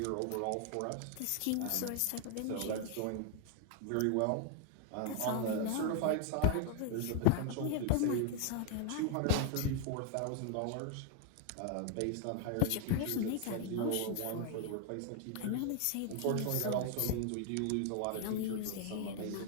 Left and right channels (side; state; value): both; different; correlation 0.00